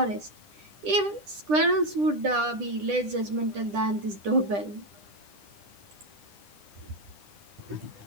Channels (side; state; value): left; late; 9.9 ms